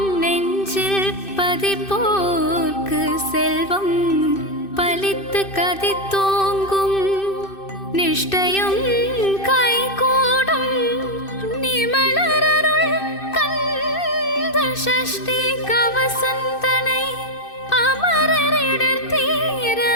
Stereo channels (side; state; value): right; late; 2.6 ms